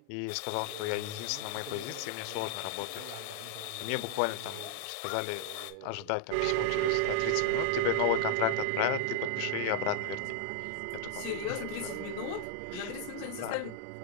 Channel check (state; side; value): different; both; correlation 0.00